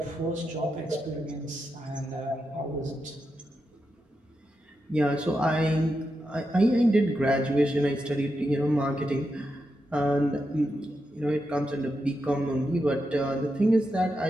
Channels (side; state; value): both; normal; correlation 0.86